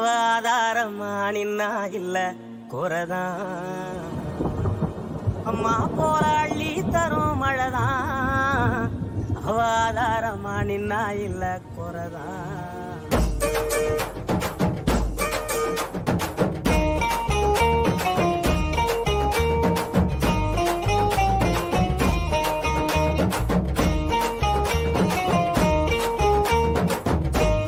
ஆதாரமா நின்னா இல்ல குறைதான் அம்மா போல அள்ளித்தரும் மழைதான் அவ ஆதாரமா நின்னா இல்ல குறைதான்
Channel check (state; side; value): identical; both; correlation 1.00